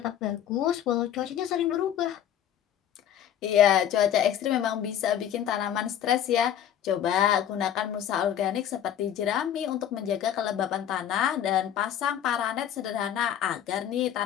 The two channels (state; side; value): quieter; right; 10.2 dB